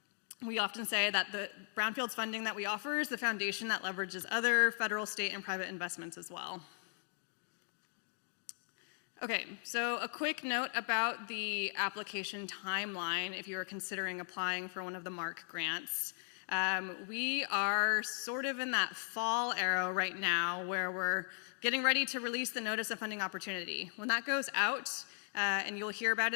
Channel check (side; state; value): right; silent; 53 dB below the other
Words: We often say that the brownfields funding that we offer is the foundation that leverages other federal, state, and private investments as well. Okay, so a quick note about the application timeline if you are considering applying for one of the MARC grants. We are sort of in that fall era right now where we're getting ready to release the Notice of Funding Opportunity. When that goes out, and you'll hear about